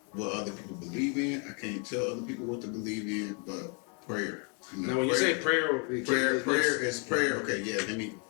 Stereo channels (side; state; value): right; quieter; 36.0 dB